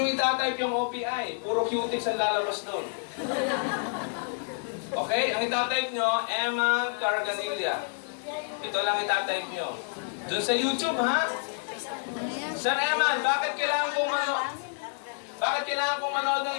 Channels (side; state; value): right; silent; digital silence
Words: itatype yung OPI. Puro cutics ang lalabas doon. Okay? Ang itatype nyo, Eman Carganilla. Ito lang itatype nyo. Doon sa YouTube, ha? Sir Eman, bakit kailangan kong manood ng